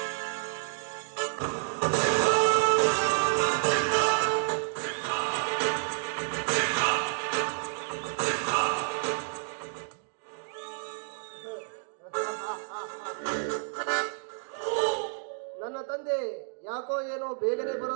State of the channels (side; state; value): left; silent; digital silence